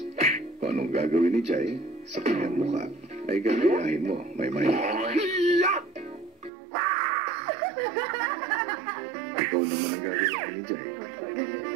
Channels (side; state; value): left; drops out; at 6.5 s